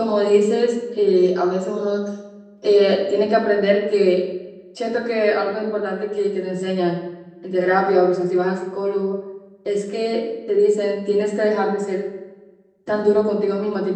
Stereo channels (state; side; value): identical; both; correlation 1.00